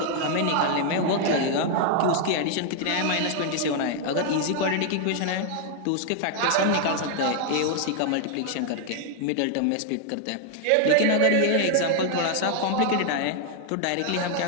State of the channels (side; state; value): both; different; correlation 0.00